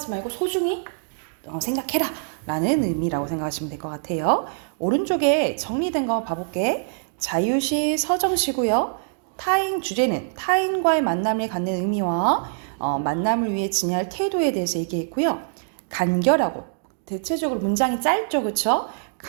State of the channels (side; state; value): left; silent; digital silence